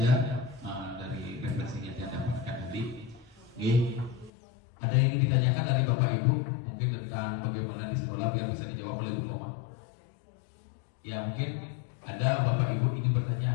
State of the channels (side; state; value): right; drops out; at 4.3 s